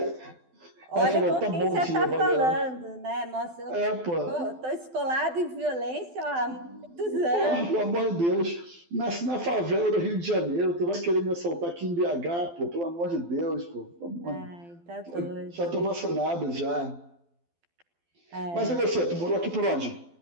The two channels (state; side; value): late; left; 12 ms